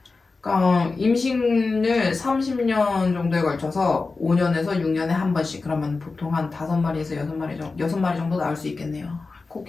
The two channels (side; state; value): right; quieter; 4.0 dB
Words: 그러니까 임신을 30년 정도에 걸쳐서 5년에서 6년에 한 번씩. 그러면 보통 한 5마리에서 6마리 정도 나올 수 있겠네요.